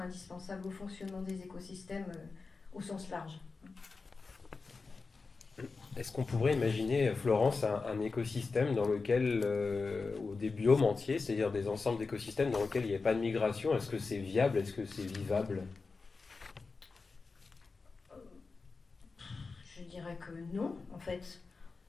indispensables au fonctionnement des écosystèmes au sens large. Est-ce qu'on pourrait imaginer, Florence, un écosystème dans lequel, ou des biomes entiers, c'est-à-dire des ensembles d'écosystèmes dans lesquels il n'y a pas de migration? Est-ce que c'est viable? Est-ce que c'est vivable? Je dirais que non, en fait.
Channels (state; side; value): quieter; right; 4.3 dB